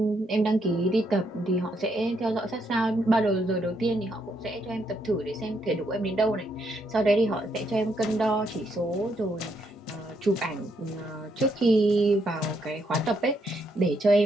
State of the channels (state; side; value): normal; both; correlation 0.76